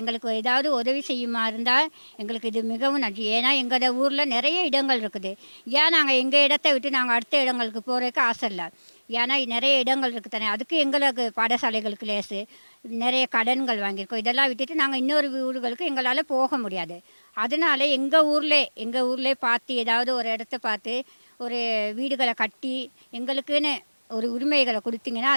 எங்களுக்கு ஏதாவது உதவி செய்யுமா இருந்தால் எங்களுக்கு இது மிகவும் நன்றி. ஏன்னா எங்களோட ஊரில் நிறைய இடங்கள் இருக்குது. ஏன் நாங்கள் எங்கள் இடத்த விட்டு நாங்கள் அடுத்த இடங்களுக்கு போகிறதுக்கு ஆசை இல்லை. ஏன்னா நிறைய இடங்கள் இருக்குது தானே. அதுக்கு எங்களுக்கு பாடசாலைகளுக்கு லேசு நிறைய கடன்கள் வாங்கியிருக்கோம். இதெல்லாம் விட்டுட்டு நாங்கள் இன்னொரு ஊர்களுக்கு எங்களால் போக முடியாது. அதனால எங்கள் ஊர்லேயே பார்த்து ஏதாவது ஒரு இடத்த பார்த்து ஒரு வீடுகளை கட்டி எங்களுக்குன்னு ஒரு உரிமைகளை கொடுத்தீங்கன்னா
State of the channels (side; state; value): both; inverted; correlation -1.00